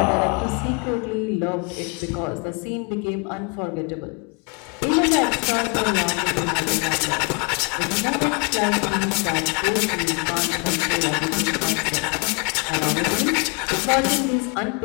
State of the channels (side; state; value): right; quieter; 33.5 dB